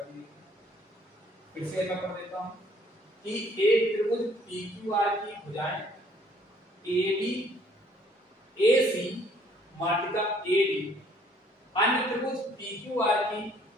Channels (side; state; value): both; normal; correlation 0.60